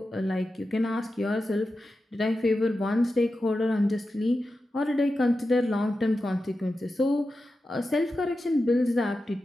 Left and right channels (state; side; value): normal; both; correlation 0.91